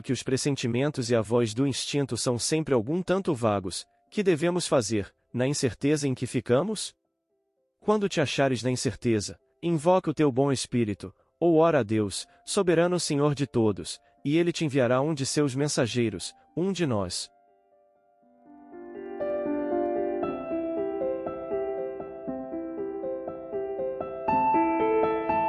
que os pressentimentos e a voz do instinto são sempre algum tanto vagos, que devemos fazer, na incerteza em que ficamos? Quando te achares na incerteza, invoca o teu bom espírito, ou ora a Deus, soberano Senhor de todos, e ele te enviará um de seus mensageiros, um de nós.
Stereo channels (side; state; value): both; identical; correlation 1.00